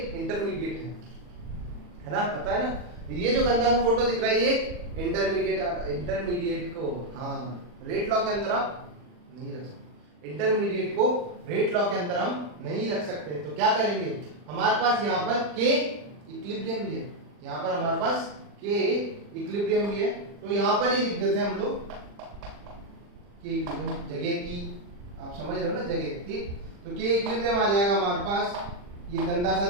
इंटरमीडिएट है ना, पता है ना। ये जो गंदा सा फोटो दिख रहा है ये इंटरमीडिएट को, हाँ, रेट लॉ के अंदर आप नहीं रख सकते, इंटरमीडिएट को रेट लॉ के अंदर हम नहीं रख सकते। तो क्या करेंगे, हमारे पास यहाँ पर K इक्विलिब्रियम भी है, यहाँ पर हमारे पास K इक्विलिब्रियम भी है, तो यहाँ पर ही लिख देते हैं हम लोग K इक्विलिब्रियम, जगह की आप समझ रहे हो ना, जगह। ठीक, तो K इक्विलिब्रियम आ जाएगा हमारे पास, ये गंदा सा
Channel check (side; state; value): left; late; 40 ms